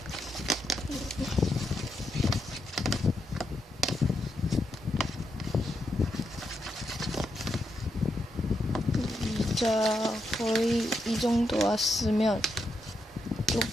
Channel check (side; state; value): both; normal; correlation 0.83